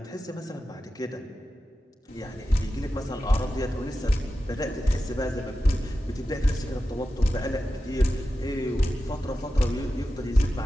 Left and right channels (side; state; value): both; normal; correlation 0.92